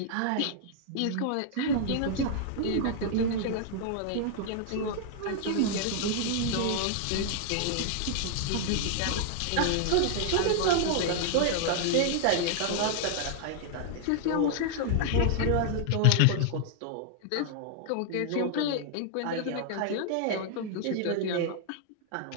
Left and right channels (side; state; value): both; different; correlation -0.01